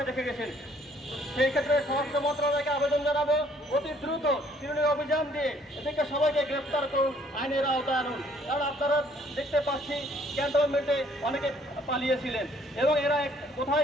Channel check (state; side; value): normal; both; correlation 0.62